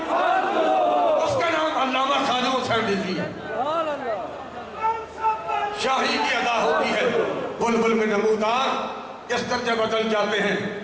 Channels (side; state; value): both; identical; correlation 1.00